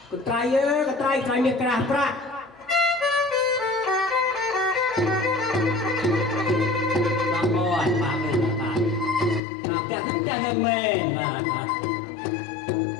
Con trai miệt cả pra Bà bò bà mình bà đẹp hơn lên bà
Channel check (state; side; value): drops out; right; at 9.4 s